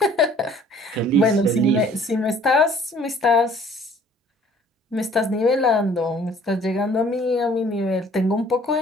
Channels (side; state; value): both; normal; correlation 0.55